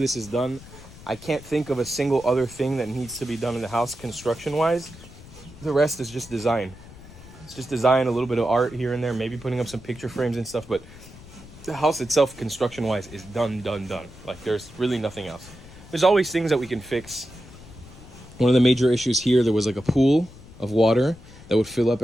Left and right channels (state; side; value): noise; left; rumble, 19 dB below the sound